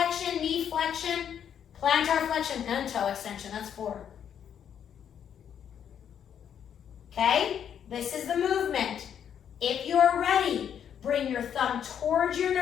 knee flexion, plantar flexion, and toe extension. That's 4. Okay? This is the movement. If you're ready, bring your thumb towards your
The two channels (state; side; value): quieter; right; 8.7 dB